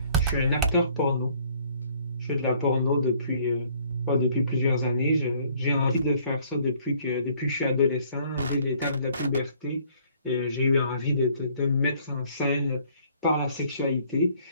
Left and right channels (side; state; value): both; inverted; correlation -0.61